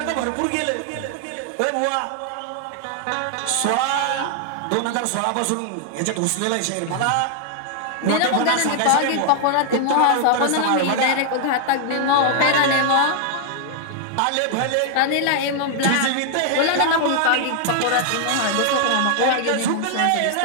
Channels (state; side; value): different; both; correlation 0.00